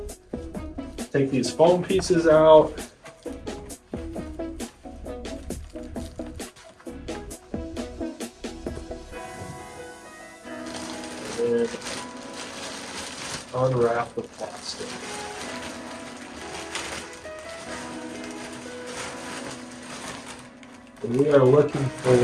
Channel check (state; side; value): identical; both; correlation 1.00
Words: Take these foam pieces out. And unwrap the plastic. And we are looking